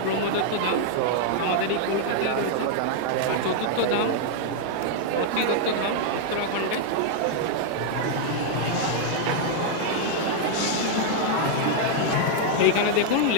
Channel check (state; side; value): different; both; correlation -0.01